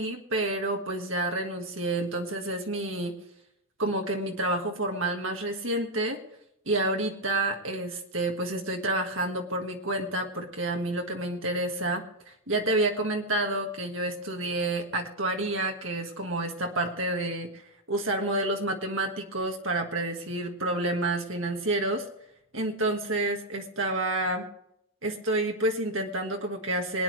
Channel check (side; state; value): both; normal; correlation 0.02